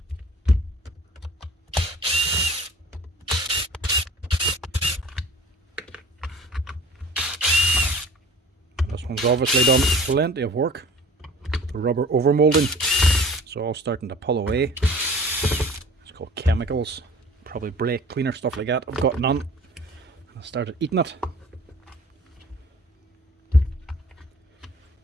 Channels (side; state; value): both; normal; correlation 0.45